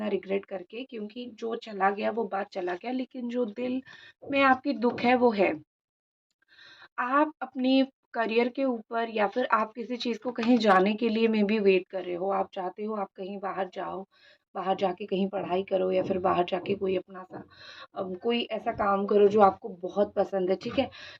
रिग्रेट करके, क्योंकि जो चला गया वो बात चला गया, लेकिन जो दिल में आपकी दुःख है वो है। आप अपनी करियर के ऊपर या फिर आप किसी चीज़ को कहीं जाने के लिए मे बी वेट कर रहे हो। आप चाहते हो आप कहीं बाहर जाओ, बाहर जाके कहीं पढ़ाई करो या फिर बाहर जाके कोई अपना सा कोई ऐसा काम करो जो आपको बहुत पसंद है, ठीक है?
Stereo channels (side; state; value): both; identical; correlation 1.00